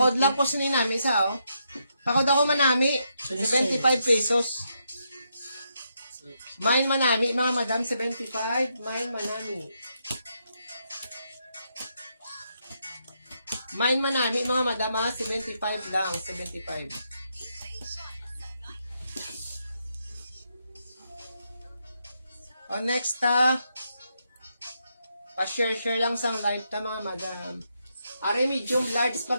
lang ko sinin namin isa, oh. Pakod ako manami. 75 pesos. Mine manami, mga madam, 75. Mine manami. Mine manami, mga madam, ha? 75 lang. 75. O, next, pa-share-share lang sa live ta, mga madam. Are medium large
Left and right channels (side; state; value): both; inverted; correlation -0.80